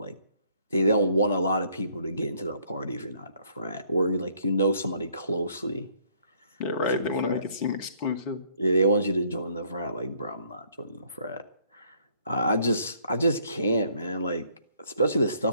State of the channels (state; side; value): inverted; both; correlation -0.65